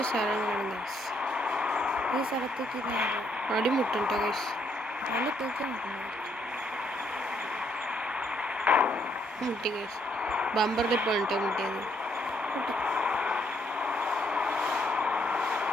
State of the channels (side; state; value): both; normal; correlation 0.71